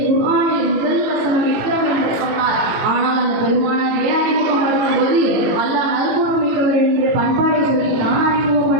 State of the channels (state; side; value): late; left; 18 ms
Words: குர்ஆனில் முதல் வசனம் இக்ரம் என்று சொன்னார். ஆனால் அந்த பெருமானாரை அறிமுகப்படுத்தும் போது அல்லாஹ் நற்குணம் மிக்கவர் என்று பண்பாடை சொல்லி தான்